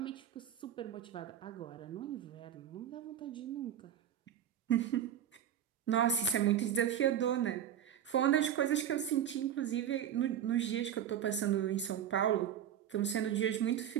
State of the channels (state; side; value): quieter; left; 9.9 dB